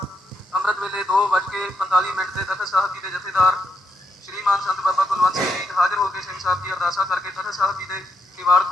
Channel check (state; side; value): normal; both; correlation 0.79